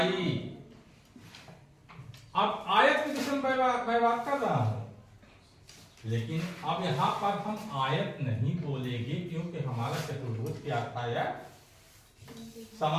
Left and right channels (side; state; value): both; identical; correlation 1.00